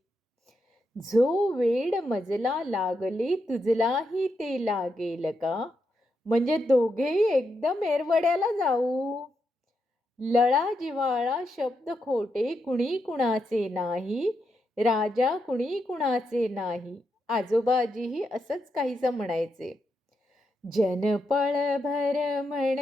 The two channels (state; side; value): normal; both; correlation 0.83